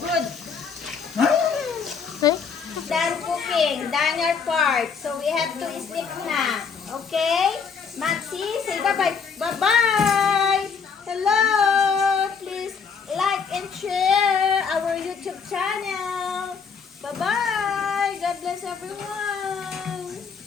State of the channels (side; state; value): right; quieter; 5.9 dB